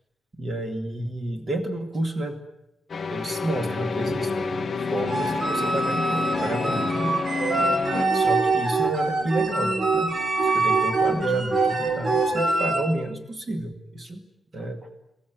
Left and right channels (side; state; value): both; normal; correlation 0.81